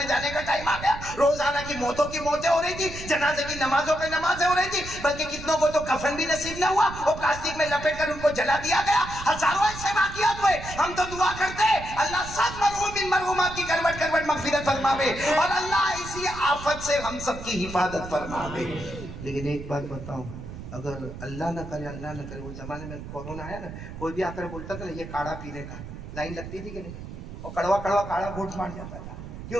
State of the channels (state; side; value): noise; right; rumble, 11 dB below the sound